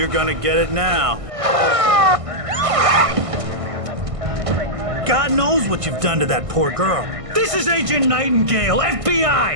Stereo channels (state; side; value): late; left; 1.5 ms